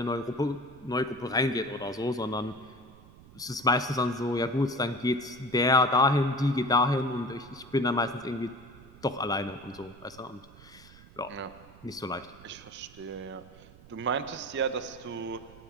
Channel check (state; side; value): noise; right; rumble, 21 dB below the sound